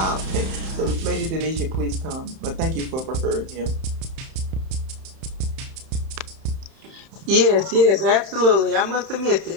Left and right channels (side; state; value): left; late; 31 ms